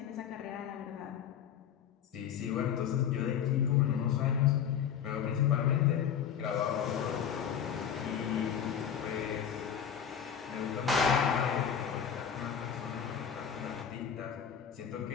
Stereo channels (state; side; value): quieter; right; 8.5 dB